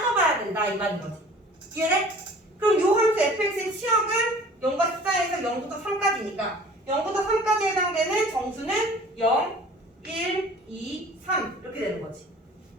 된다 이 말인 거지. 이해돼? 그럼 요 함수 fx의 치역은 0과 14에서 0부터 3까지니까 0부터 3까지에 해당되는 정수는 0, 1, 2, 3 이렇게 되는 거지.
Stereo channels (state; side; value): normal; both; correlation 0.47